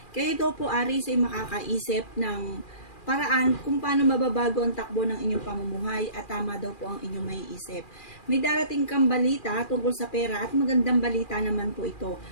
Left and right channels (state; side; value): late; right; 2.4 ms